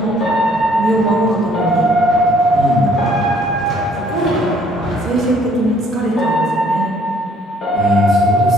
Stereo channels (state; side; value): normal; both; correlation 0.62